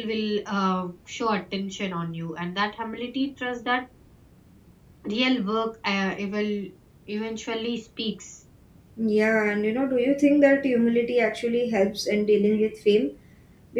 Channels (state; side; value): identical; both; correlation 1.00